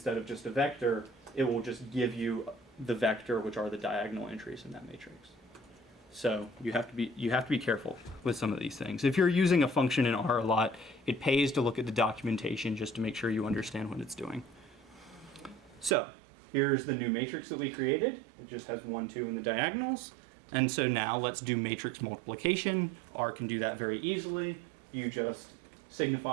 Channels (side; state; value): left; drops out; at 16.0 s